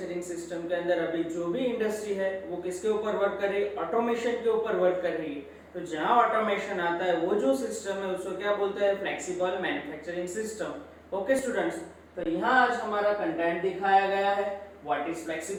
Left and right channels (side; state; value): both; identical; correlation 1.00